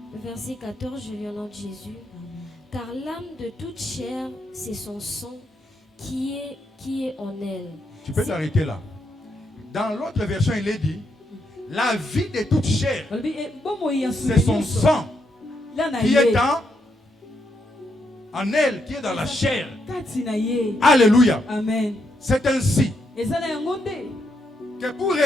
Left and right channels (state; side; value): normal; both; correlation 0.79